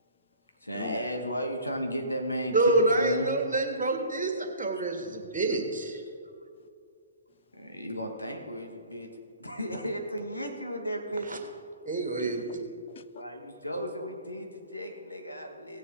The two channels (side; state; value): both; inverted; correlation -0.46